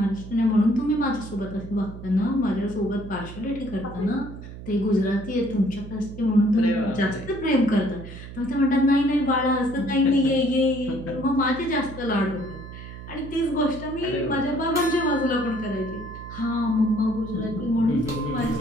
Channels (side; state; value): right; noise; hum, 13 dB below the sound